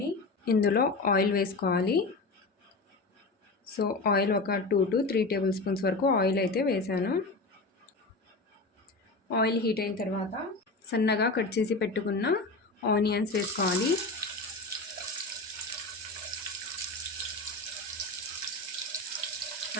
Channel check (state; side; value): quieter; right; 3.3 dB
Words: ఇందులో ఆయిల్ వేసుకోవాలి. సో ఆయిల్ ఒక 2 to 3 టేబుల్ స్పూన్స్ వరకు ఆయిల్ అయితే వేసాను. ఆయిల్ హీట్ అయిన తర్వాత సన్నగా కట్ చేసి పెట్టుకున్న ఆనియన్స్ వేసుకోవాలి.